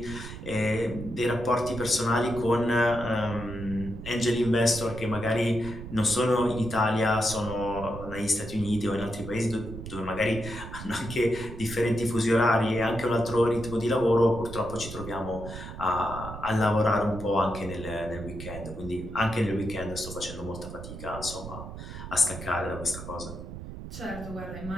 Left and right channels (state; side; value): noise; right; rumble, 10 dB below the sound